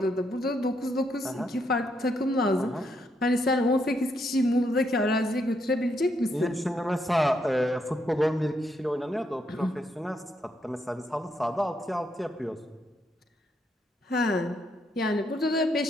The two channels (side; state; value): both; normal; correlation 0.77